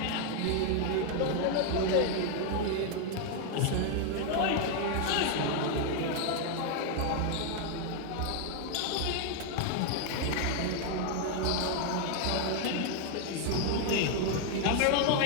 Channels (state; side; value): different; both; correlation 0.00